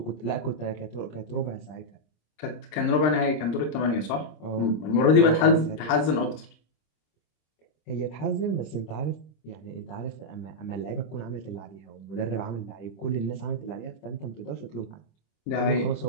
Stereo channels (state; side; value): late; right; 26 ms